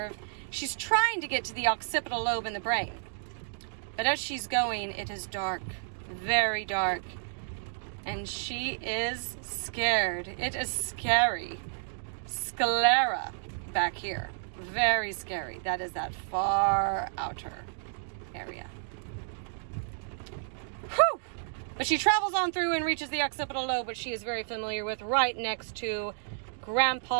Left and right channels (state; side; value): silent; left; digital silence